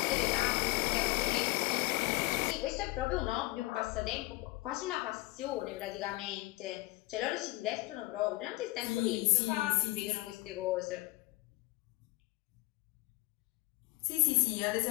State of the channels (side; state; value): right; quieter; 20.6 dB